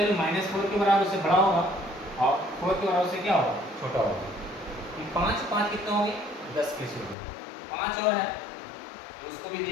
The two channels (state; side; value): drops out; right; at 7.2 s